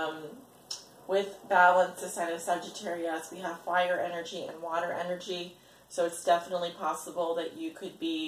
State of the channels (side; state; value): both; identical; correlation 1.00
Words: With balance, the sign of Sagittarius, we have fire energy and water energy. So it's definitely possible that you could